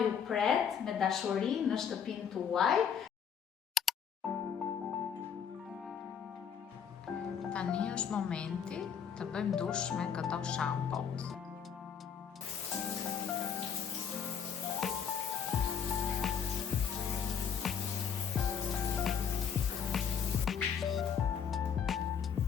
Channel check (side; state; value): right; quieter; 7.5 dB